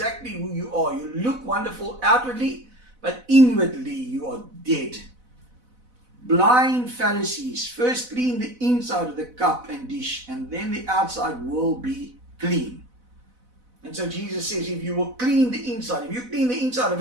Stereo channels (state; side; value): late; left; 4.0 ms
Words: who you are. You look wonderful outwardly, but inwardly you are dead. Blind Pharisees, first clean the inside of the cup and dish, and then the outside will be clean. And so Jesus says, if you will clean the inside, if you clean the inside of